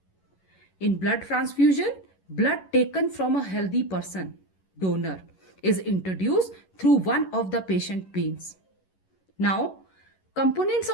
In blood transfusion, blood taken from a healthy person, donor, is introduced through one of the patient veins. Now, components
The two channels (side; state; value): right; late; 11 ms